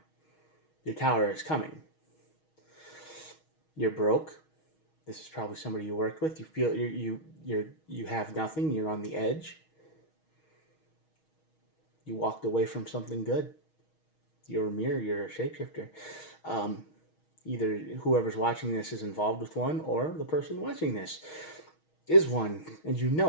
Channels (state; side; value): late; right; 6.3 ms